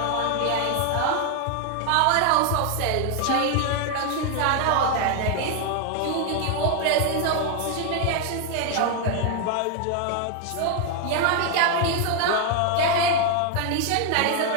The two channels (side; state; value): both; different; correlation 0.01